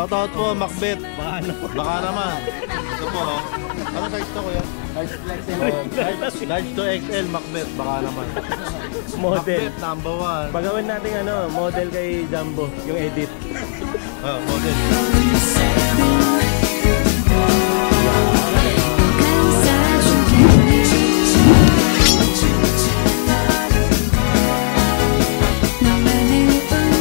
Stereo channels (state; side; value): silent; right; 67 dB below the other